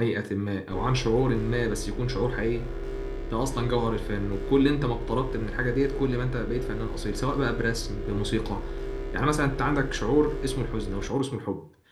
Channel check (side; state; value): both; identical; correlation 1.00